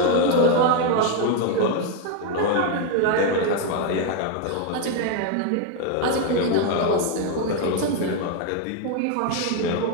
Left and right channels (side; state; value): both; different; correlation 0.01